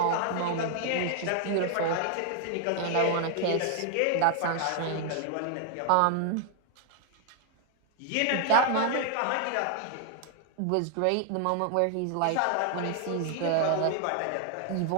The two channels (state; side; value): different; both; correlation 0.00